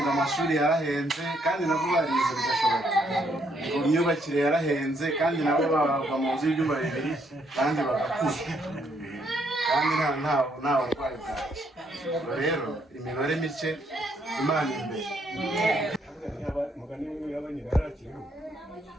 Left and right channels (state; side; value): normal; both; correlation 0.72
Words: amashuri yarahenze kandi nabo barize bigashoboka, ngo imyubakire yarahenze kandi nabo babagwa mu nzu y'ibyumba bibiri kandi bagakura kandi nta burwayi bwacyo. Rero imibare mike Imana imbere. Mugani w'abanye barakiriho